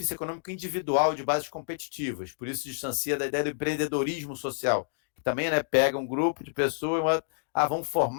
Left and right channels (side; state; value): right; silent; digital silence